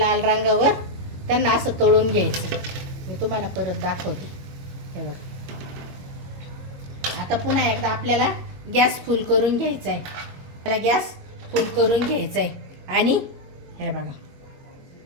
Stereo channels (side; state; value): left; late; 21 ms